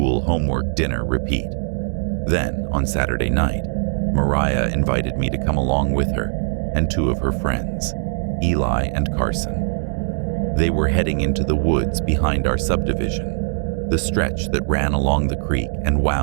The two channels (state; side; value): silent; left; digital silence